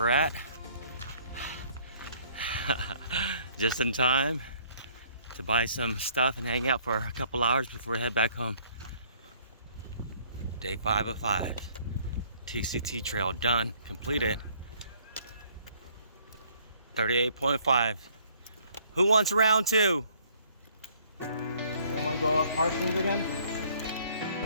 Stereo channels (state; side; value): inverted; both; correlation -0.61